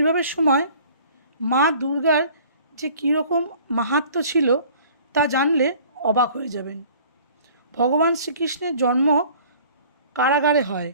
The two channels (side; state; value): both; inverted; correlation -0.50